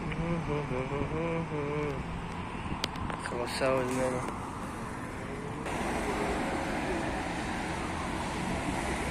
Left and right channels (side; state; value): both; identical; correlation 1.00